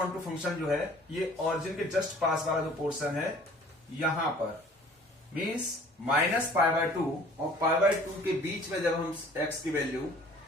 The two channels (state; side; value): normal; both; correlation 0.51